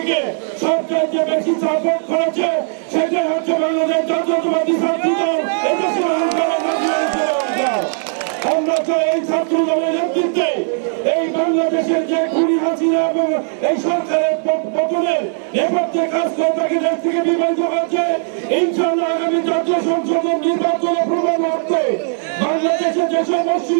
সবচেয়ে বেশি সাপোর্ট করেছে সেটাই হচ্ছে বাংলাদেশ জাতীয়তাবাদী ছাত্র দল। আমরা চাই এই ছাত্র দলের নেতৃত্বে এই বাংলাদেশের যে খুনি হাসিনা এবং এই সরকারের পতনের নেপথ্যে কাজ করে তাকে দেশ থেকে বিভাজিত হচ্ছে। ইনশাআল্লাহ আগামী জাতীয় সংসদ নির্বাচনে প্রমাণ করতে বাংলাদেশে যেসব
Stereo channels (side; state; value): left; silent; digital silence